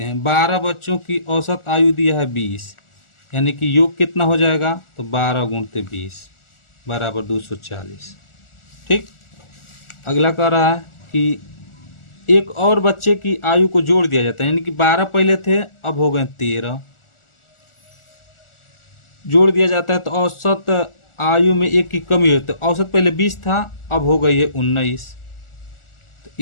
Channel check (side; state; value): right; late; 1.4 ms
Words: हैं, 12 बच्चों की औसत आयु दिया है 20, यानी कि योग कितना हो जाएगा, तो 12 गुणते 20 बराबर 240, ठीक। अगला कह रहा है कि एक और बच्चे की आयु को जोड़ दिया जाता है, यानी कि 12 पहले थे अब हो गए 13, जोड़ दिया जाता है तो औसत आयु में 1 की कमी होती है। औसत पहले 20 था अब हो गई है 19, तो